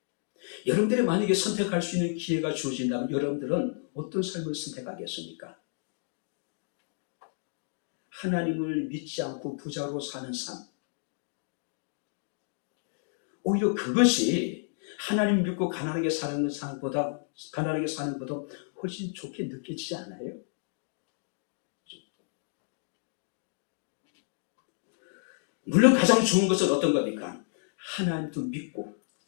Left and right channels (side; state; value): right; silent; digital silence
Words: 여러분들이 만약에 선택할 수 있는 기회가 주어진다면 여러분들은 어떤 삶을 선택하겠습니까? 하나님을 믿지 않고 부자로 사는 삶. 오히려 그것이 하나님 믿고 가난하게 사는 삶보다 훨씬 좋게 느껴지지 않아요? 물론 가장 좋은 것은 어떤 겁니까? 하나님도 믿고